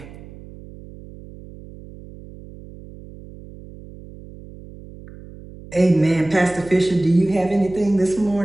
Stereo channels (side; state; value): right; noise; hum, 18 dB below the sound